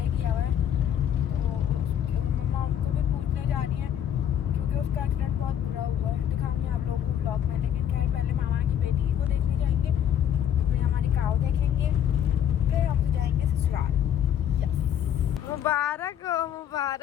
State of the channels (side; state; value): right; quieter; 9.8 dB